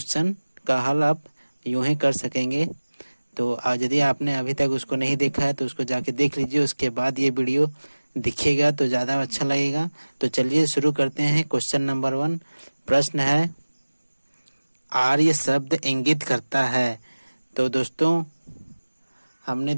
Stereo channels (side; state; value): both; inverted; correlation -1.00